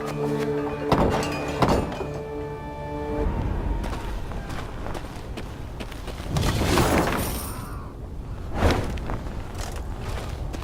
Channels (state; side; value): identical; both; correlation 1.00